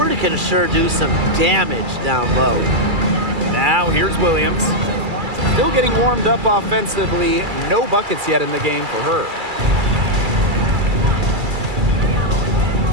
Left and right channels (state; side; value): late; left; 2.3 ms